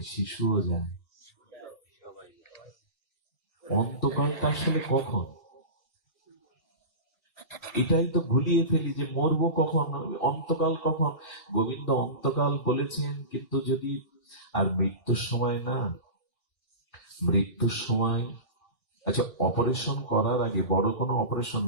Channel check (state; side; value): late; right; 1.2 ms